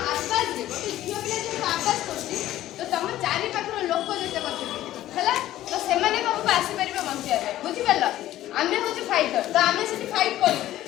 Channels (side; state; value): right; quieter; 14.0 dB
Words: आमे होची फाइटर तो आमे से फाइट कर